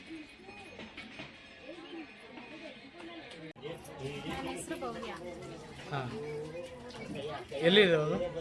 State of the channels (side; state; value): both; identical; correlation 1.00